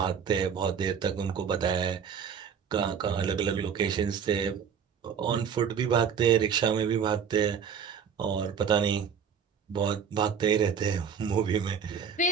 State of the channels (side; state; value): left; quieter; 7.1 dB